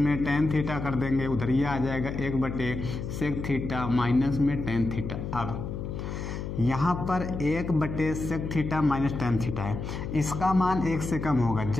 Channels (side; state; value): left; noise; hum, 6 dB below the sound